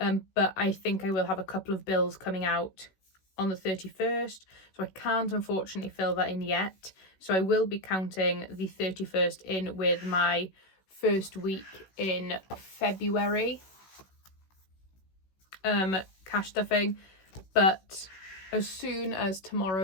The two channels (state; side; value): late; right; 16 ms